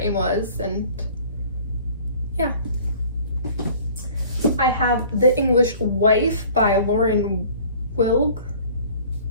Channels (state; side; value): inverted; both; correlation -0.49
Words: was, and yeah. I have The English Wife by Lauren Wilg.